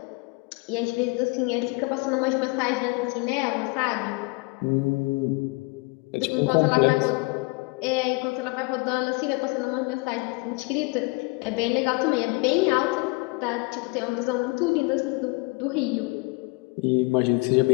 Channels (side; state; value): right; quieter; 27.5 dB